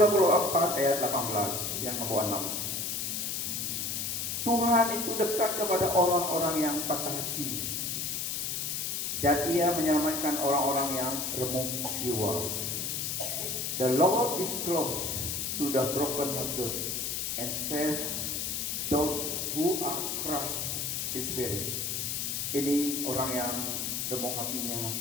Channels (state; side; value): noise; left; hiss, 1 dB below the sound